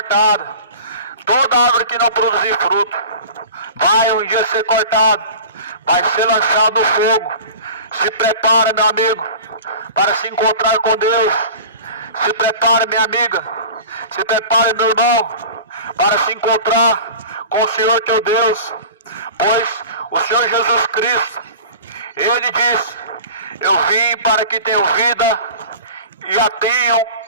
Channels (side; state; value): both; inverted; correlation -0.37